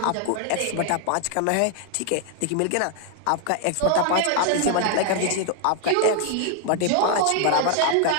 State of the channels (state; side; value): different; both; correlation 0.00